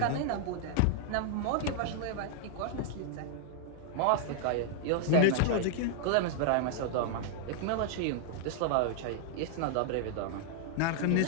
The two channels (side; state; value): both; different; correlation -0.01